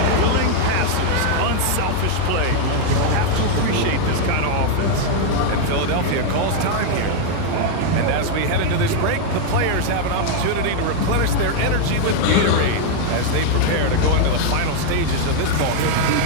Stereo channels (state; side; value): different; both; correlation 0.00